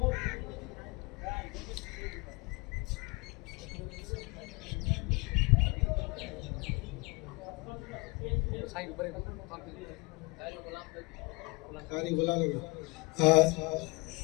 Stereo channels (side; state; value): right; quieter; 27.2 dB